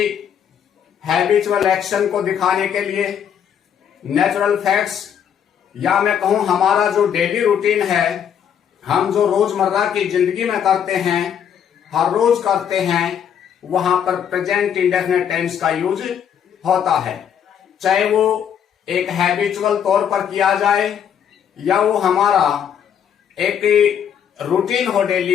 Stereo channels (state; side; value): quieter; right; 8.6 dB